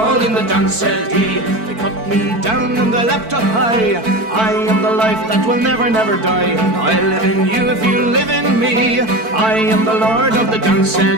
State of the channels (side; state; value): left; late; 4.5 ms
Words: in the dance, said he. They cut me down and I leapt up high. I am the life that will never, never die. I live in you if you live in me. I am the Lord of the dance, said